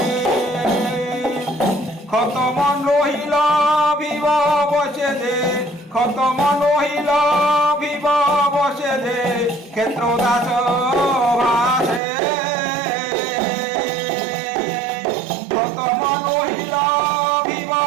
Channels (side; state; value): left; drops out; at 12.0 s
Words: খতম নহিল ভিব বসে যে খতম নহিল ভিব বসে যে ক্ষেত্র দাস ভাসে খতম নহিল ভিব